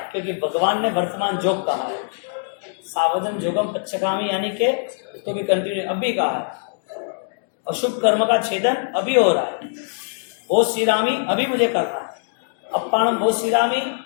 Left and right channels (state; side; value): silent; right; digital silence